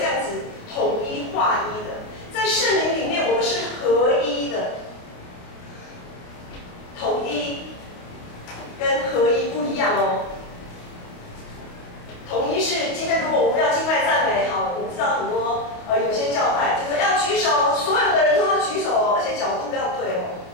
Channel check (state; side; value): late; right; 28 ms